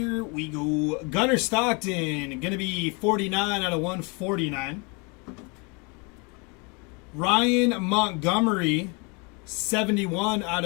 we go. Gunnar Stockton, going to be 49 out of 149. Ryan Montgomery, 71 out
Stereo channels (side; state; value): right; quieter; 31.5 dB